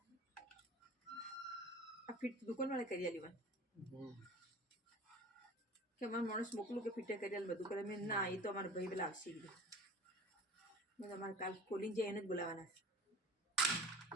આ ફિટ દુકાનવાળા કરી આલી કે અમારે માણસ મોકલું કે ફિટે કરી બધું કરે મેં ના એ તો અમારા ભાઈ પેલા આવશે કીધું મેં તમારે કાલ ખોલીને જાય એને જ બોલાવવાના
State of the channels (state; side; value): normal; both; correlation 0.40